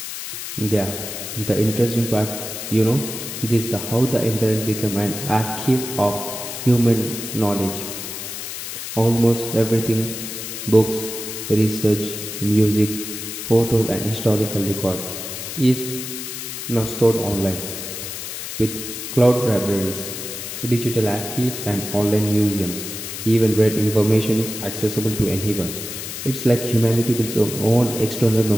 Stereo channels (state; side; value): noise; left; hiss, 7 dB below the sound